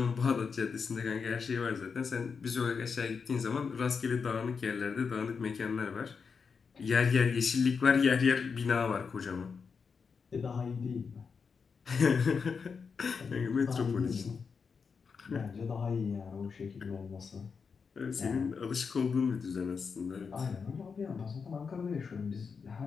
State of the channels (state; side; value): quieter; right; 5.6 dB